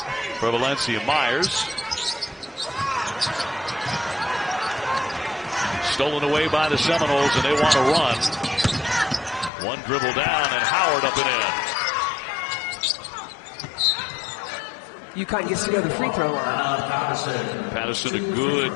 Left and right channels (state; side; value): drops out; right; at 9.5 s